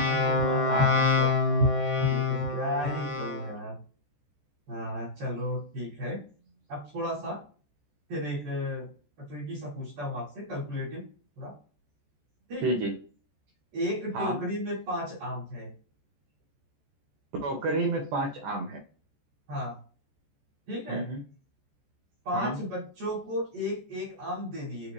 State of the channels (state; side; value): late; left; 14 ms